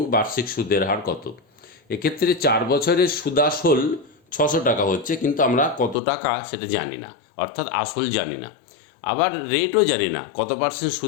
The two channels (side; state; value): right; drops out; at 6.0 s